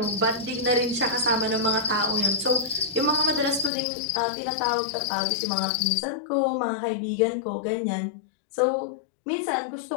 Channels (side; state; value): right; drops out; at 3.7 s